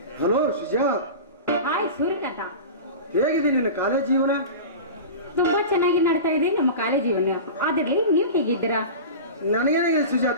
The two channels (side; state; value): both; inverted; correlation -0.30